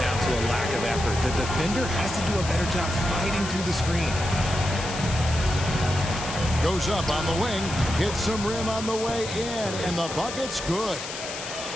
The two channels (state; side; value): noise; left; hiss, 8 dB below the sound